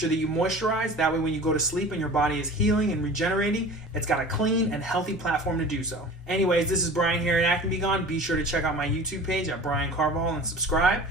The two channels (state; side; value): normal; both; correlation 0.39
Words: that you moisturize. That way when you go to sleep and your body is healing and regenerating, it's got a clean and healthy platform to do so. Anyways, this is Brian here at Acne Be Gone. Be sure to check out my YouTube page at Brian Carvajal and subscribe.